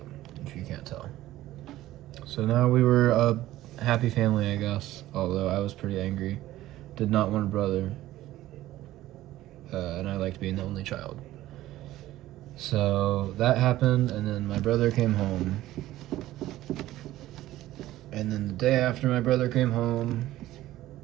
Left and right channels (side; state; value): left; quieter; 15.2 dB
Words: if you can't tell. So now we were a happy family, I guess, although I was pretty angry. Did not want a brother. And I liked being the only child. So that happened, and then my brother came home. And then the day after my brother came home,